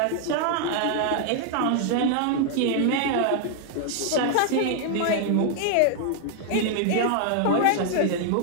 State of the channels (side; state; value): both; different; correlation 0.00